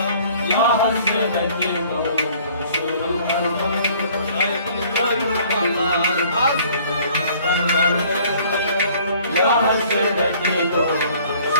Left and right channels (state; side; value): inverted; both; correlation -0.55